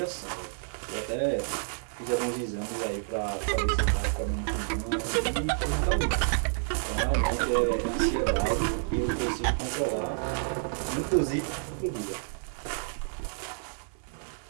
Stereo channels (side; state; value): left; silent; 57 dB below the other